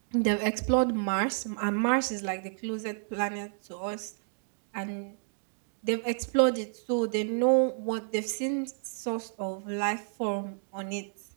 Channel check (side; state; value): left; silent; digital silence